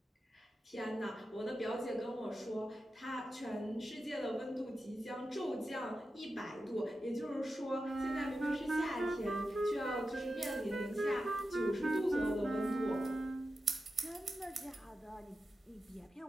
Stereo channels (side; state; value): both; normal; correlation 0.91